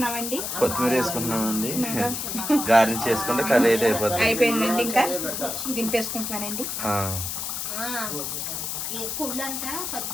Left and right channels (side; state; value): left; noise; hiss, 4 dB below the sound